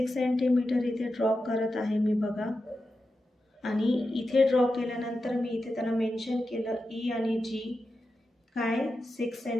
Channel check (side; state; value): both; normal; correlation 0.90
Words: सेंटीमीटर इथे ड्रॉ करत आहे मी बघा. आणि इथे ड्रॉ केल्यानंतर मी इथे त्यांना मेन्शन केलं E आणि G काय 6